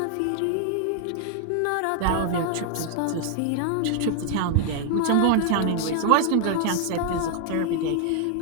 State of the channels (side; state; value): both; different; correlation 0.00